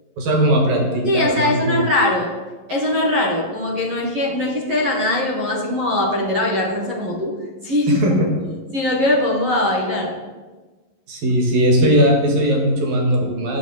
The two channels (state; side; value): late; left; 11 ms